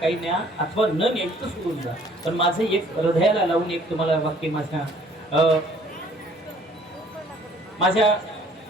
न्या अथवा न न्यायचं सोडून जा. पण माझं एक हृदयाला लावून एक तुम्हाला वाक्य माझ्या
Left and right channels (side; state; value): both; normal; correlation 0.57